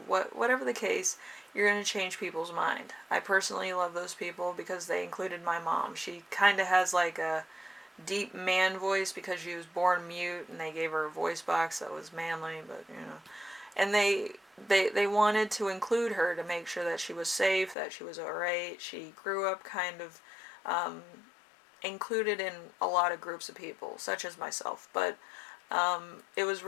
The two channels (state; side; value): drops out; right; at 17.8 s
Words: whatever the case, you're going to change people's mind. I personally love those people because they included my mom. She kind of has like a deep man voice because she was born mute, and they gave her a voice box that was manly, but and they wanted to include her to make sure that she was safe, that she was alright. She grew up kind of included in a lot of groups of people, such as myself, but it was